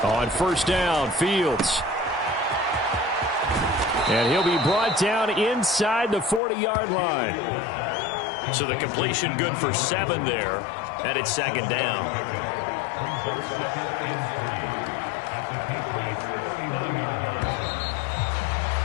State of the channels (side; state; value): right; drops out; at 6.4 s